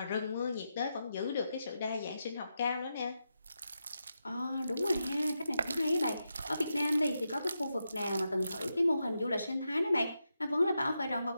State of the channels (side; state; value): both; inverted; correlation -0.87